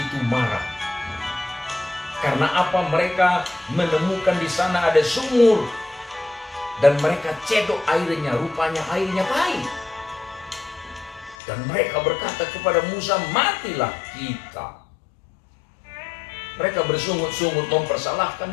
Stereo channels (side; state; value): right; drops out; at 11.4 s